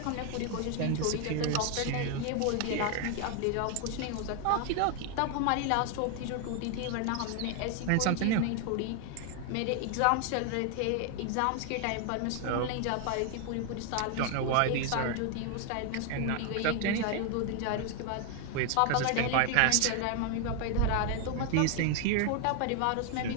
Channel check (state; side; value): different; both; correlation 0.00